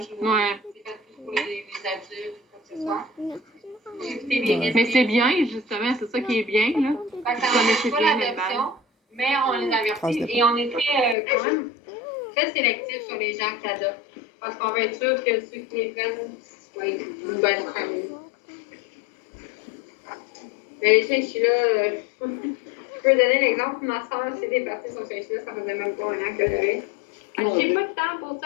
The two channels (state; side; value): drops out; right; at 11.2 s